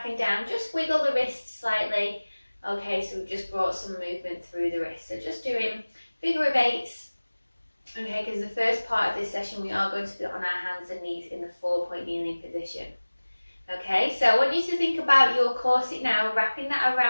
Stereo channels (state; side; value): inverted; both; correlation -1.00